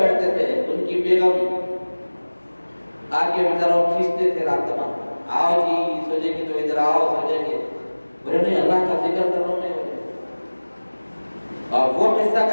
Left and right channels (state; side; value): inverted; both; correlation -1.00